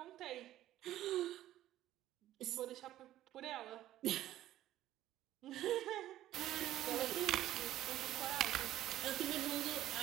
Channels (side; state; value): left; quieter; 13.7 dB